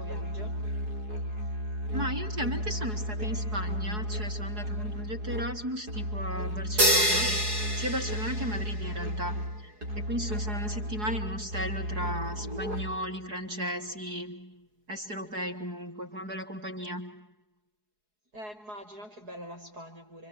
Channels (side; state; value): left; late; 4.7 ms